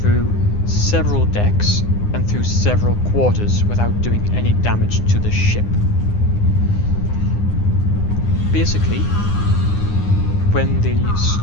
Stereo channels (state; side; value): late; right; 9.8 ms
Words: several decks and through several quarters without doing any damage to the ship. Basically, when